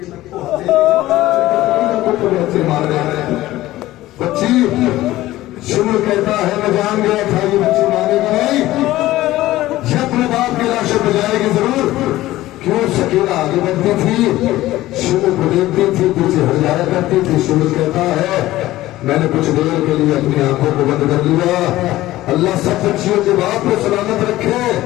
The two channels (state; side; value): quieter; right; 16.2 dB